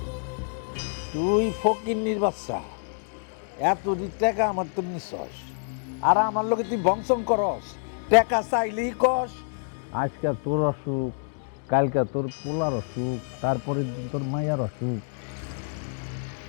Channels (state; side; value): silent; right; digital silence